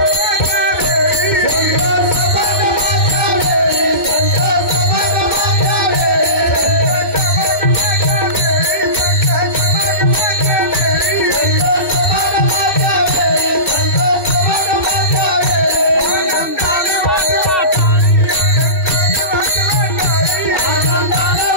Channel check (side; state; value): right; late; 2.6 ms